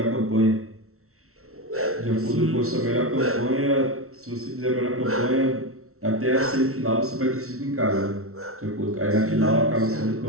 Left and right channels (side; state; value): left; late; 0.63 ms